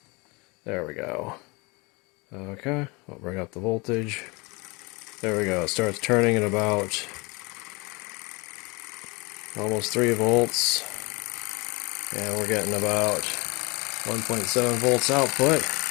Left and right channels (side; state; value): right; quieter; 27.0 dB